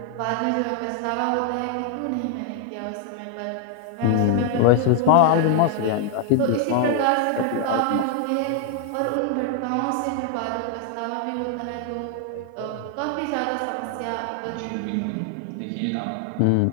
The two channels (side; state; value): both; different; correlation 0.00